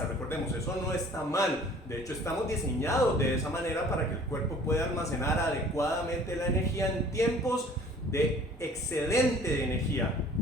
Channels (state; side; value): normal; both; correlation 0.51